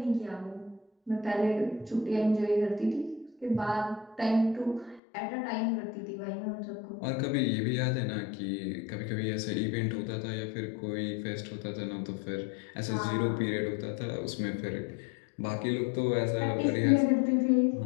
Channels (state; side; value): drops out; right; at 5.0 s